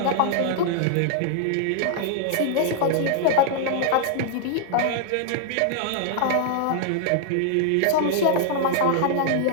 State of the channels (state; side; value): different; both; correlation -0.01